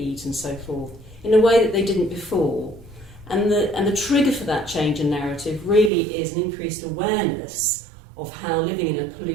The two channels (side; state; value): left; drops out; at 5.9 s